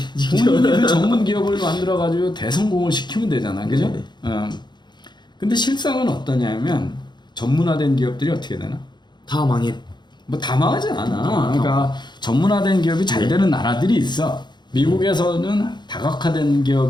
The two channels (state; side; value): late; right; 0.21 ms